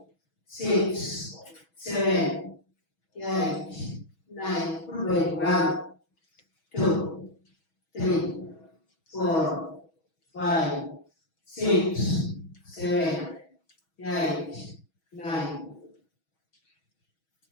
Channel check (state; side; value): late; right; 6.2 ms